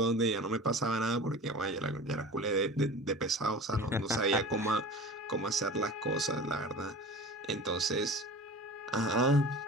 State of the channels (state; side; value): normal; both; correlation 0.37